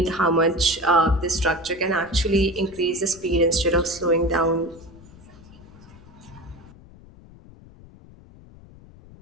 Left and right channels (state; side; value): noise; left; rumble, 22 dB below the sound